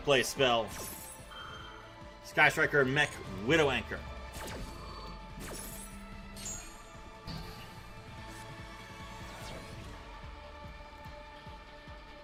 play spell. Sky Striker Mech Widow Anchor.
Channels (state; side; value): identical; both; correlation 1.00